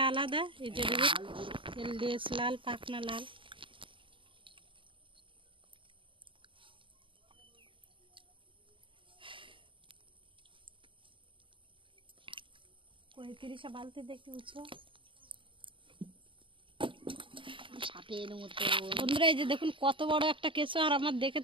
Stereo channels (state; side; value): late; left; 0.25 ms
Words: আলাদা। এই যে দেখুন, এর লেজ লাল, পাখনা লাল। পঁয়ত্রিশে বালতি দেখতে উঁচু সাপের মতো। বন্ধুরা, এই যে দেখুন কত বড় একটা কেঁচো, আর আমার দেখে